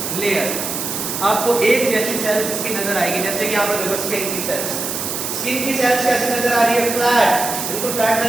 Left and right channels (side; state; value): right; noise; hiss, 4 dB below the sound